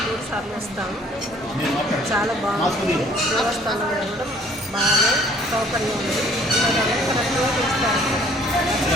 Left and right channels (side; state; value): both; normal; correlation 0.57